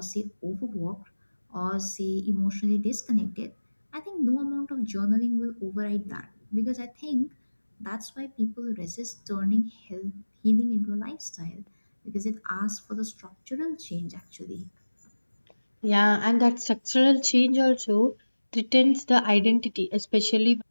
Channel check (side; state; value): both; inverted; correlation -1.00